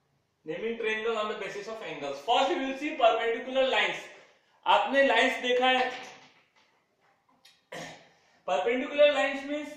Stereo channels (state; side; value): identical; both; correlation 1.00